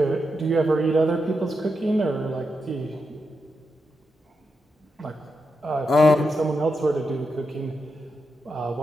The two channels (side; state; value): both; normal; correlation 0.86